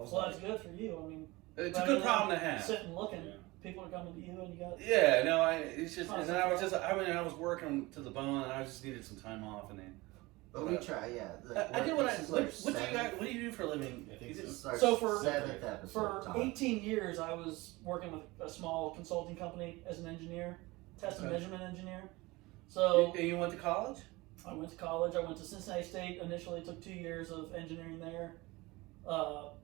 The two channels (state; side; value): quieter; left; 21.8 dB